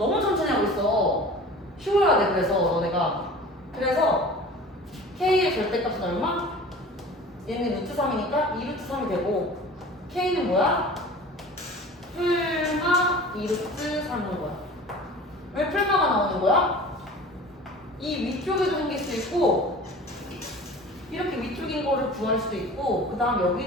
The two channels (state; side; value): normal; both; correlation 0.41